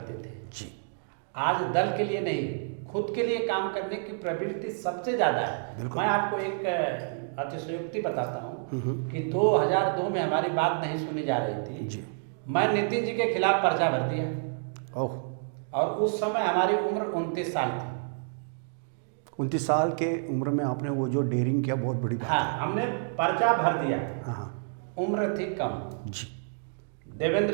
थे जी। आज दल के लिए नहीं, खुद के लिए काम करने की प्रवृत्ति सबसे ज़्यादा है। मैं आपको एक अतिशयोक्ति बताता हूँ कि 2002 में हमारी बात नहीं सुनी जा रही थी जी। मैं नितिन जी के खिलाफ पर्चा भर दिया ओह, और उस समय हमारी उम्र 29 साल थी। 29 साल के उम्र में आपने वो जो डेयरिंग किया, बहुत बड़ी बात हाँ, हमने पर्चा भर दिया। है। हाँ उम्र थी कम। जी।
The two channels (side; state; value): left; silent; digital silence